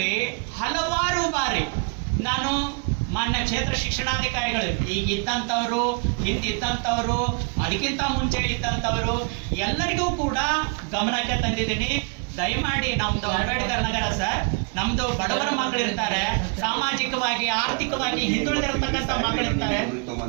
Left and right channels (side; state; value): left; quieter; 34.3 dB